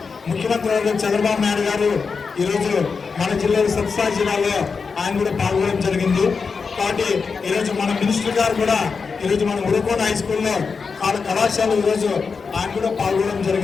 ముఖ్యమంత్రి వర్గం చంద్రబాబు నాయుడు గారు ఈరోజు మన జిల్లాలో సత్సాయి జిల్లాలో ఆయన కూడా పాల్గొనడం జరిగింది. కాబట్టి ఈరోజు మన మినిస్టర్ గారు కూడా ఈరోజు మన ఉరకోట హై స్కూల్లో కళాశాల ఈరోజు ఆయన కూడా పాల్గొనడం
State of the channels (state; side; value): quieter; right; 5.1 dB